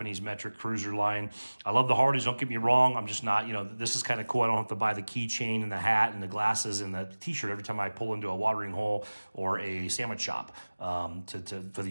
metric cruiser line. I love the Harleys, don't get me wrong. I'm just not, this is kind of cool. I don't have to buy the keychain and the hat and the glasses and the t-shirt every time I pull into a watering hole or a sandwich shop for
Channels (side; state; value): both; inverted; correlation -1.00